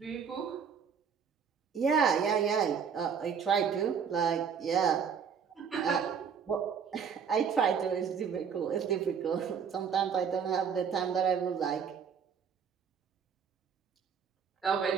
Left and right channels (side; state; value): left; quieter; 6.9 dB